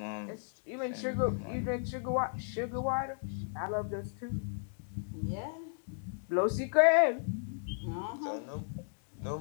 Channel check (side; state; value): right; silent; digital silence